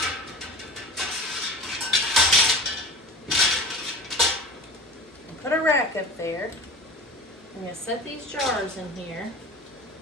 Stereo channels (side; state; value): both; normal; correlation 0.34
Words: Put a rack up there. I'm going to set these jars in here.